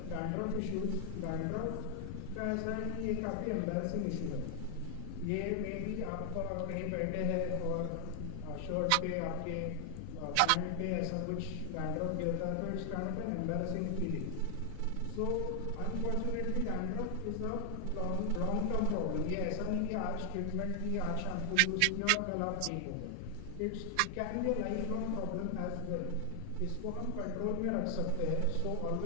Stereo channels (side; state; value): both; different; correlation 0.00